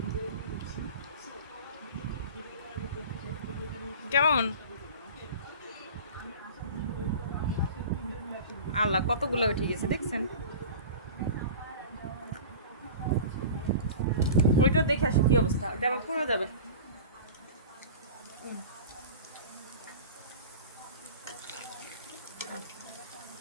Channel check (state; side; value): inverted; both; correlation -0.36